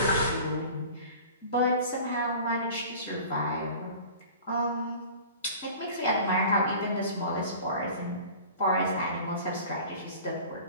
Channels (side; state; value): both; inverted; correlation -0.41